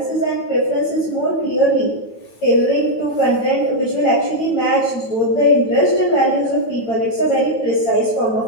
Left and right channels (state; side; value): late; right; 8.9 ms